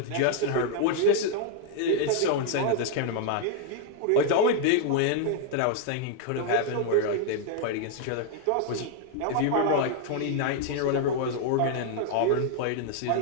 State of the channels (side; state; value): both; different; correlation 0.00